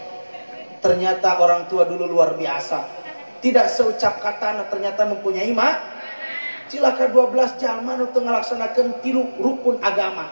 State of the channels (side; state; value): both; inverted; correlation -1.00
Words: Ternyata orang tua dulu luar biasa. Tidak seucap kata ternyata mempunyai cilaka 12 jalma nu teu ngalaksanakeun 3 rukun agama